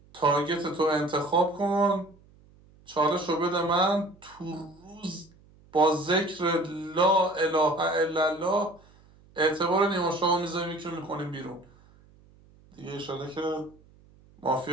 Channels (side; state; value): right; noise; hum, 28 dB below the sound